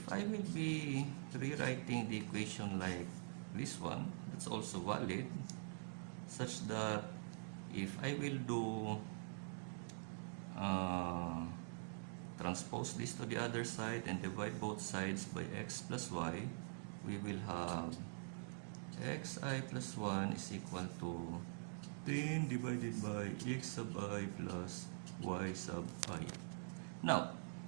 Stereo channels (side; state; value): left; silent; digital silence